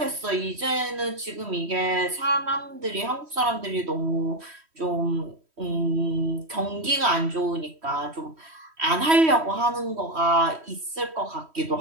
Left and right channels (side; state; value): left; late; 3.1 ms